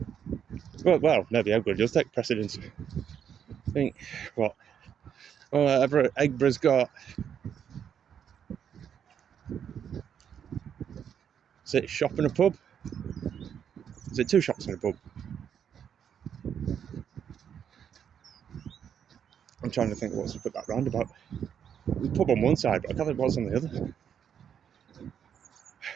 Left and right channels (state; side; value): quieter; left; 8.4 dB